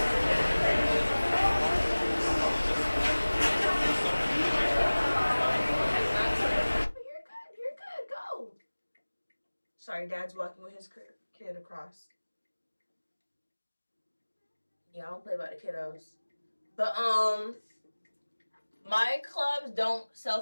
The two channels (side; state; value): both; inverted; correlation -1.00